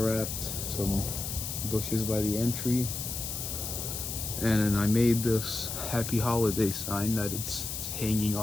wrapped, some bushes by the entry, and then I made this happy holiday sign that it's hanging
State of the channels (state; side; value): noise; left; hiss, 5 dB below the sound